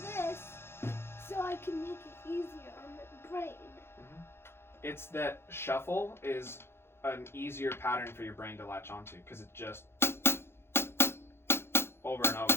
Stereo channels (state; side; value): late; right; 0.12 ms